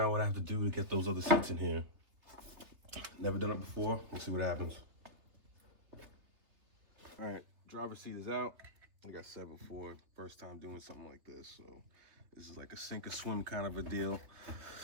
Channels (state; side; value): late; left; 3.3 ms